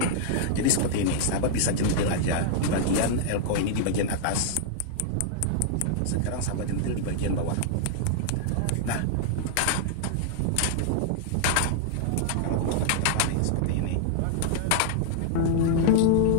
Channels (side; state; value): both; different; correlation -0.01